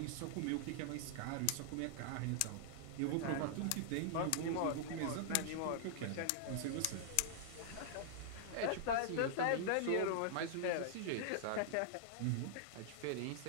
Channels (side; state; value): both; different; correlation -0.01